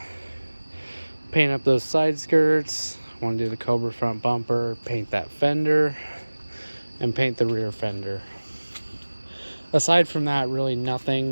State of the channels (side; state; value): both; inverted; correlation -1.00